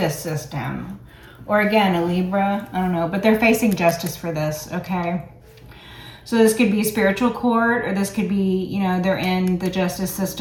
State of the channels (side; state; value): both; identical; correlation 1.00